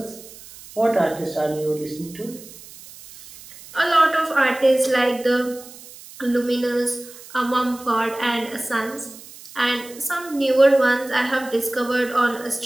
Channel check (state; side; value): noise; right; hiss, 18 dB below the sound